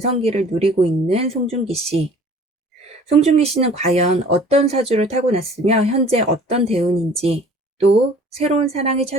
누리고 있는 송중기 씨. 송중기 씨는 과연 어떤 사주를 타고났으며 현재 어떤 대운인지, 또 새로운 사랑이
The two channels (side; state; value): both; normal; correlation 0.50